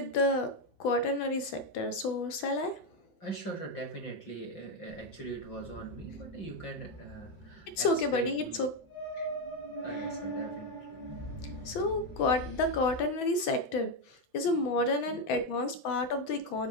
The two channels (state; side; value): late; right; 6.1 ms